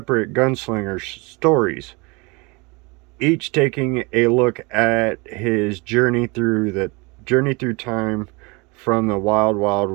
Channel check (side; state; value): left; quieter; 27.3 dB